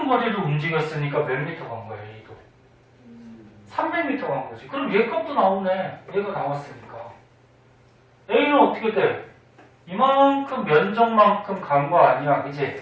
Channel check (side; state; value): both; identical; correlation 1.00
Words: 거리를 움직였으니까 몇 미터 간 거야, A도? 300m 간 거지. 그럼 얘 값도 나오네. 얘가 나왔으니까. A는 어떻게 돼? 이만큼 면적만큼 간 거 아니야.